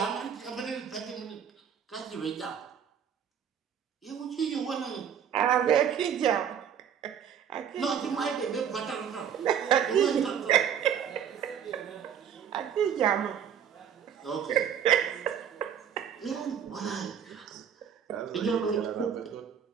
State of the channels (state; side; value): quieter; left; 8.4 dB